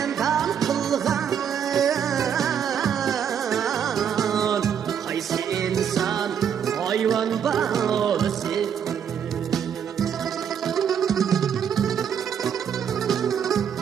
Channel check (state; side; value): quieter; left; 8.2 dB